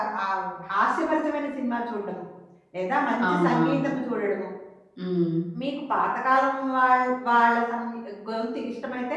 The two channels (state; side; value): identical; both; correlation 1.00